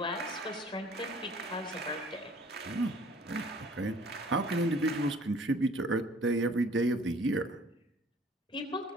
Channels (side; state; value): both; normal; correlation 0.53